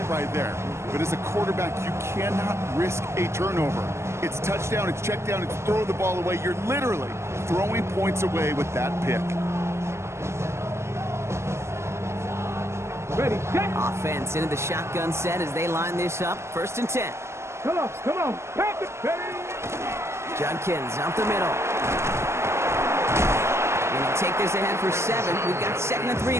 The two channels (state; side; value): late; left; 0.13 ms